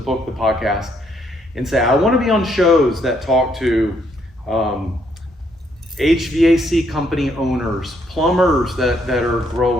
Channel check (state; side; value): normal; both; correlation 0.71